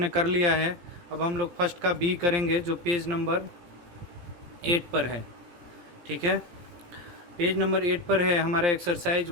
कर लिया है। अब हम लोग फर्स्ट का बी करेंगे जो पेज नंबर 8 पर है। ठीक है, पेज नंबर 8 पर है हमारा एक्सरसाइज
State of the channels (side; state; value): left; late; 17 ms